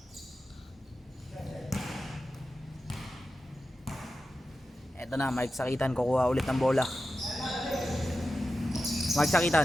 Ito na, Mark Sakitan, kukuha ulit ng bola. Mark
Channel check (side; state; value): both; normal; correlation 0.92